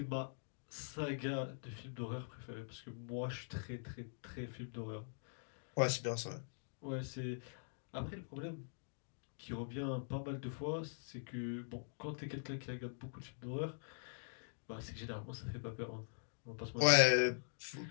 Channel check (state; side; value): silent; right; digital silence